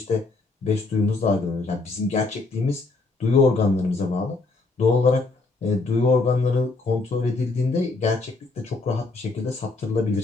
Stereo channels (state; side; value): quieter; right; 3.6 dB